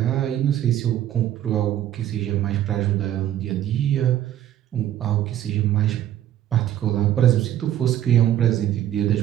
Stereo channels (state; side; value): quieter; left; 11.9 dB